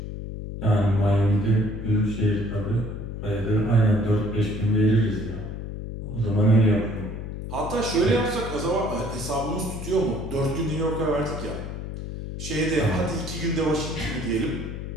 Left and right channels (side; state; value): left; noise; hum, 7 dB below the sound